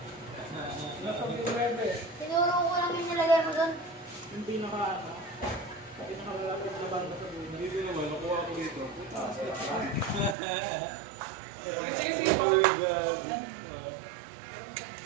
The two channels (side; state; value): left; drops out; at 10.4 s